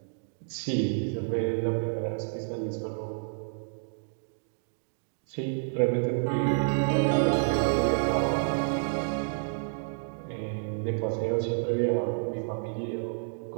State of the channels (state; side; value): silent; left; digital silence